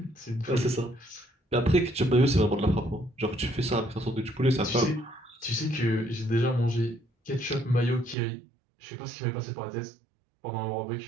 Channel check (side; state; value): left; drops out; at 8.2 s